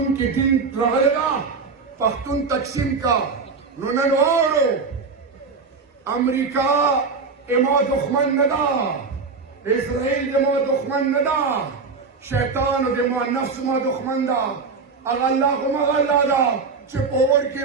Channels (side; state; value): left; quieter; 4.7 dB